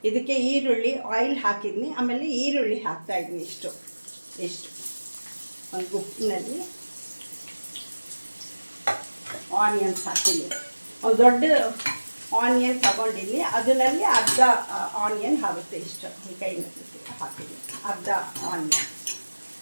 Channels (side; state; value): both; inverted; correlation -1.00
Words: ಇದಕ್ಕೆ ಈರುಳ್ಳಿ ಆಯಿಲ್ ಹಾಕಿದ್ದೀನಿ. ಆಮೇಲೆ ಈರುಳ್ಳಿ ಹಾಕ್ತಾಯಿದ್ದೀನಿ ಇಷ್ಟು ಒಂದು ಗುಪ್ಪಿನಲ್ಲಿ. ಆನಿಯನ್ಸ್ ಹಾಕಿದ್ದೀನಿ. ಒಂದು ದೊಡ್ಡ ಆನಿಯನ್ ತಗೊಂಡಿದ್ದೀನಿ, ಅದರಲ್ಲಿ ಅರ್ಧ ಆನಿಯನ್ ಆಗುತ್ತೆ. ಇಷ್ಟು ಈ ಕೈನಲ್ಲಿ ಹಾಕಿದ್ದೀನಿ ಅರ್ಧ ಆನಿಯನ್.